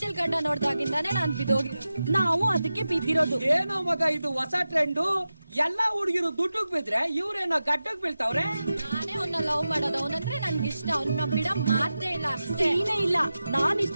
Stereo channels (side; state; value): both; inverted; correlation -0.93